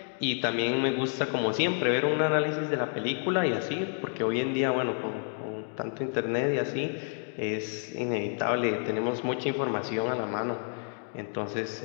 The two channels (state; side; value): silent; right; 55 dB below the other